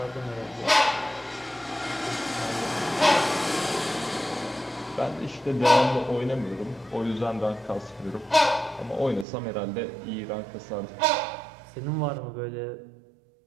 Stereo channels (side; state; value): left; drops out; at 9.2 s